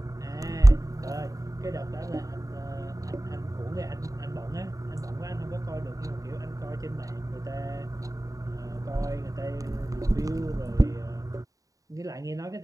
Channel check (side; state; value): left; late; 0.16 ms